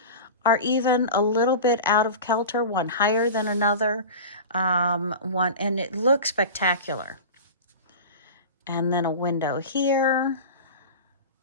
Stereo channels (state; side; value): inverted; both; correlation -0.31